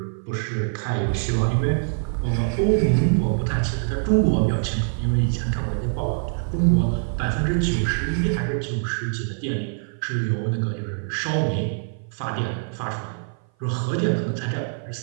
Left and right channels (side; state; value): left; silent; 57 dB below the other